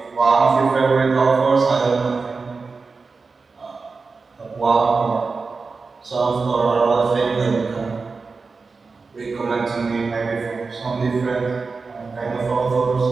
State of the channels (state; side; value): quieter; left; 4.4 dB